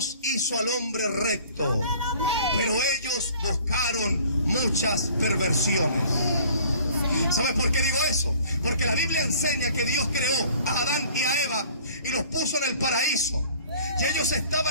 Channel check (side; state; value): both; inverted; correlation -0.52